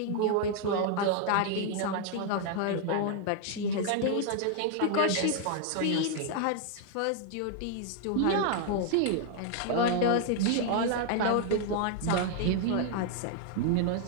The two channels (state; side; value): different; both; correlation 0.00